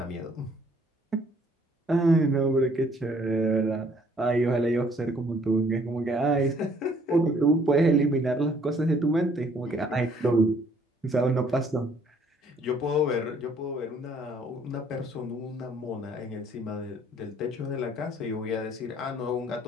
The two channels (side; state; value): both; normal; correlation 0.61